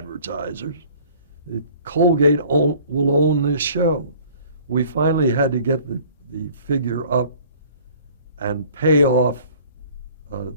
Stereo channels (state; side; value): inverted; both; correlation -0.52